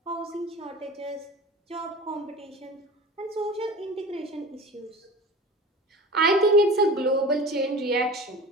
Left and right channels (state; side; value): normal; both; correlation 0.37